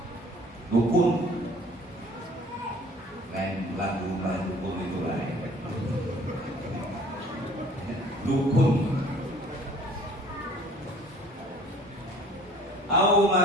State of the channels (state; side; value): normal; both; correlation 0.52